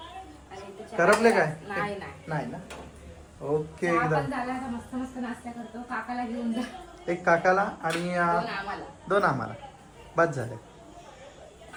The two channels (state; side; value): identical; both; correlation 1.00